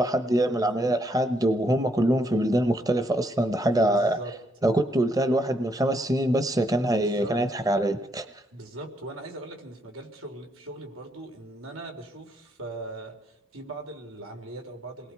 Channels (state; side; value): normal; both; correlation 0.74